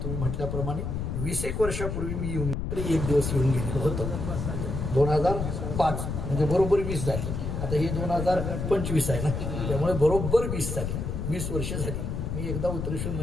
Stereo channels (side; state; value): left; noise; rumble, 3 dB below the sound